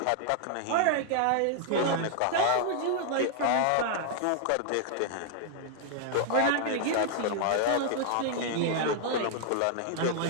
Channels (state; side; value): different; both; correlation -0.01